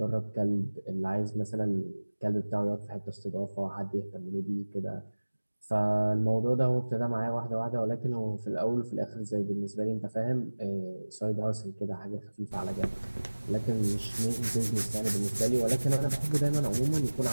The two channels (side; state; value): both; inverted; correlation -1.00